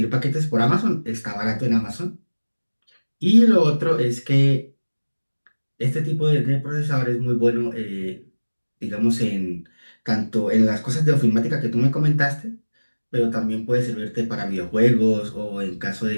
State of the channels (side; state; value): both; inverted; correlation -1.00